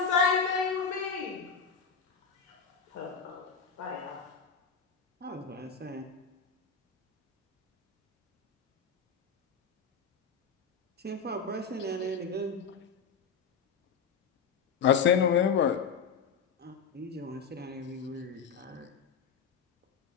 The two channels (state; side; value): quieter; right; 6.1 dB